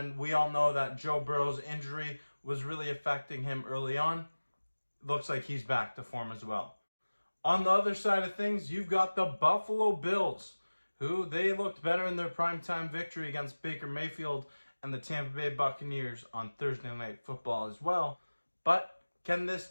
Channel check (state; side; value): inverted; both; correlation -1.00